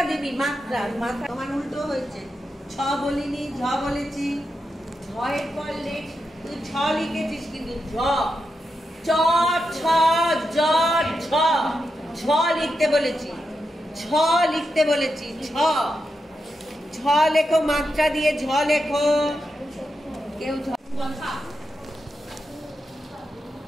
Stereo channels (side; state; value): both; normal; correlation 0.87